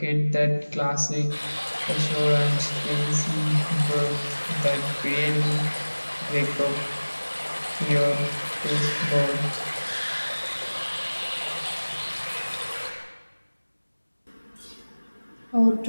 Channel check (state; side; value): inverted; both; correlation -1.00